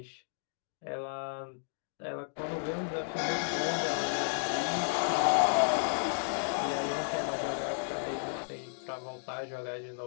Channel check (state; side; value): silent; right; digital silence